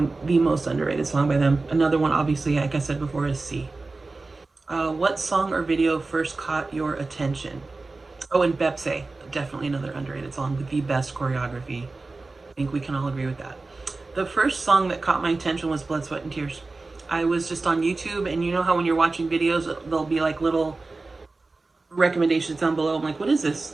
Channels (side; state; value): left; quieter; 3.5 dB